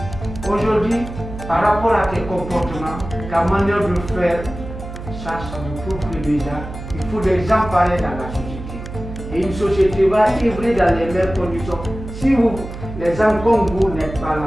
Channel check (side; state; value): right; noise; hum, 11 dB below the sound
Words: Aujourd'hui, par rapport à tes comportements, ta manière de faire, ça nous prouve que déjà, il faut des gens pareils dans la société. Et une société va vivre dans les mêmes conditions. Si vous, les gens comme vous n'êtes pas